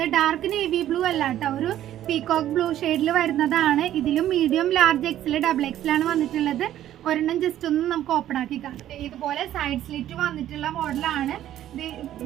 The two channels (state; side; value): quieter; left; 12.3 dB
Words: ഡാർക്ക് നേവി ബ്ലൂ അല്ല കേട്ടോ, ഒരു പീകോക്ക് ബ്ലൂ ഷെയ്ഡിൽ വരുന്നതാണ്. ഇതിലും medium, large, XL, double XL ആണ് വന്നിട്ടുള്ളത്. ഒരെണ്ണം ജസ്റ്റ് ഒന്ന് നമുക്ക് ഓപ്പൺ ആക്കി കാണാം. ഇതുപോലെ സൈഡ് സ്ലിറ്റ് വന്നിട്ടുള്ള മോഡലാണ്.